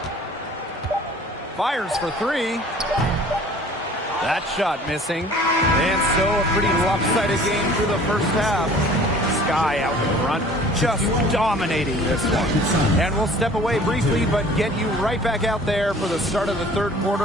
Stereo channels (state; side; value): normal; both; correlation 0.49